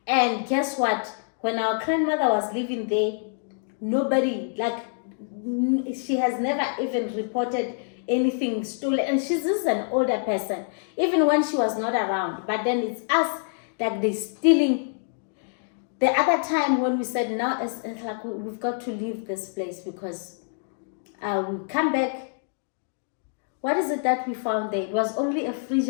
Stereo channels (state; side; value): silent; right; digital silence